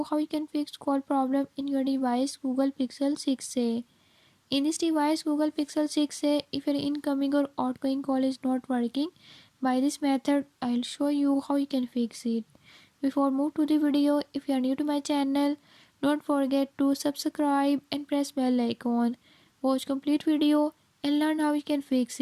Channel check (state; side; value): identical; both; correlation 1.00